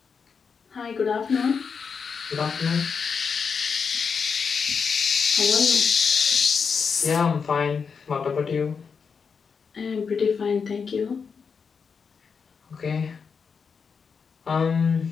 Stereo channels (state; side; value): quieter; right; 5.8 dB